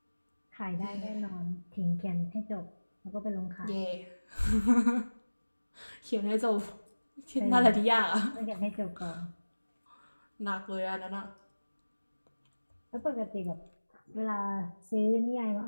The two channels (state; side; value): inverted; both; correlation -1.00